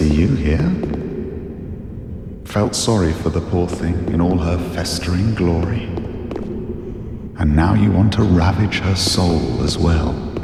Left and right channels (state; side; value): identical; both; correlation 1.00